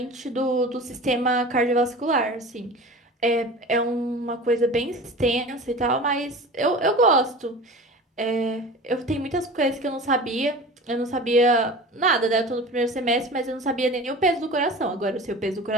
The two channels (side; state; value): both; normal; correlation 0.36